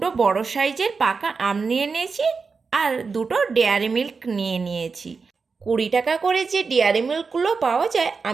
বড় সাইজের পাকা আম নিয়ে নিয়েছি আর দুটো ডেয়ারি মিল্ক নিয়ে নিয়েছি। 20 টাকা করে যে ডেয়ারি মিল্কগুলো পাওয়া যায়,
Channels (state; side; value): quieter; left; 4.9 dB